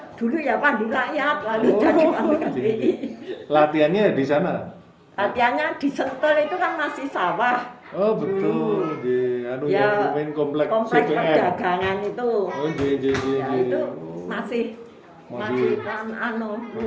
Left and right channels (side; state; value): both; identical; correlation 1.00